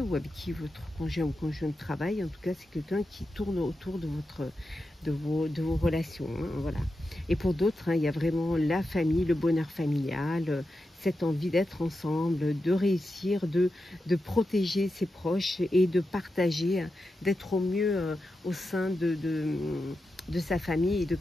ou avec qui votre conjoint ou conjointe travaille. En tout cas, c'est quelqu'un qui tourne autour de vos relations. Hein, voilà. Et pour d'autres, hein, il y a vraiment la famille, le bonheur familial, cette envie d'être ensemble, de réussir, de protéger ses proches et de partager, hein, d'être au mieux au sein de sa famille et de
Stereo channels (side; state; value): both; normal; correlation 0.89